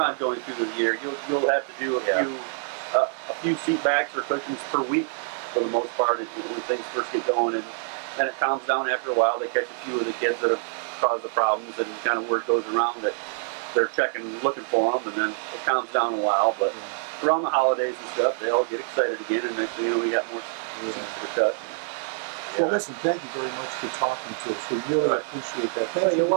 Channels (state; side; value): silent; left; digital silence